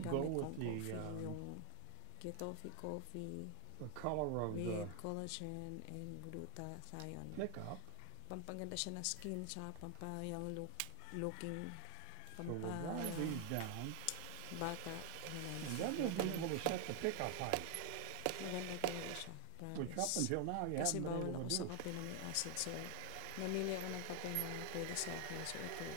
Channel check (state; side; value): different; both; correlation 0.00